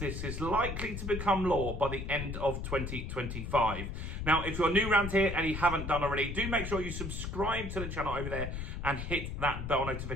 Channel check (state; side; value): noise; left; rumble, 5 dB below the sound